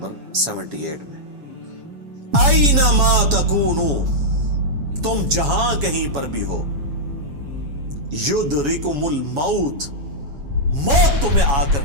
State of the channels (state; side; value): late; left; 7.2 ms